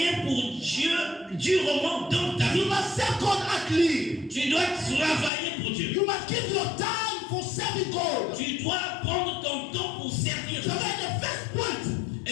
pour Dieu durement dans ta You vie. must serve God actively. Tu dois travailler pour Dieu. You must give your time for serving God. Tu dois prendre ton temps pour servir So Dieu. that's the first point.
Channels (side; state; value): right; drops out; at 5.3 s